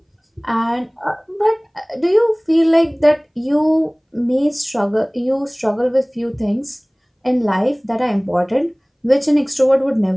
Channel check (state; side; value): identical; both; correlation 1.00